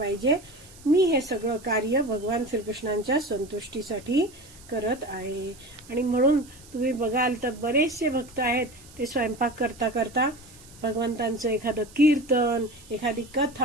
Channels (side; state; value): right; noise; hiss, 22 dB below the sound